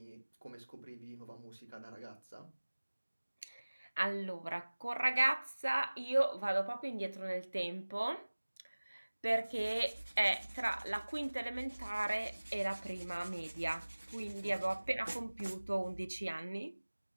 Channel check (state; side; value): inverted; both; correlation -1.00